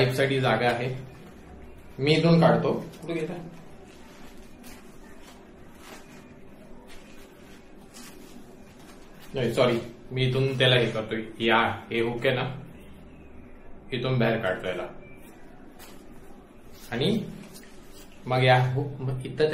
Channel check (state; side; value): identical; both; correlation 1.00